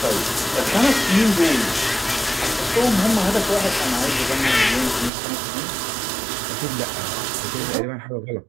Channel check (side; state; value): left; drops out; at 5.1 s